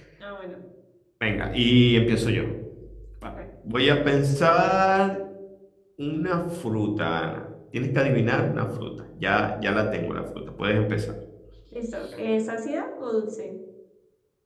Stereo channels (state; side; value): identical; both; correlation 1.00